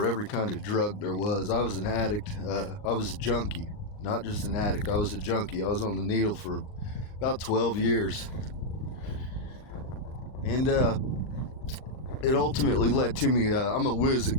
every kind of drug there was. I was an addict. I was a junkie. Not just an addict, I was a junkie. I was on the needle for about 12 years. And it ultimately led to me, I'm a whiz at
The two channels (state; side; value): late; right; 39 ms